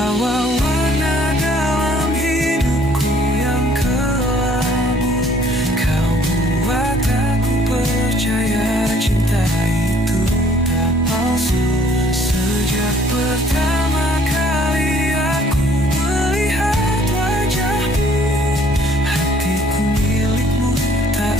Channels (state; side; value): normal; both; correlation 0.59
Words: warna dalam hidupku yang kelabu. Kau buat aku percaya cinta itu tak palsu. Sejak pertama kali aku melihat wajahmu, hatiku milikmu tak